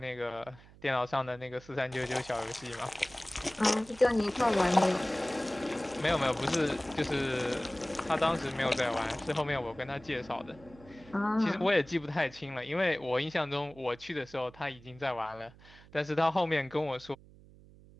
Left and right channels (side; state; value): right; noise; hum, 23 dB below the sound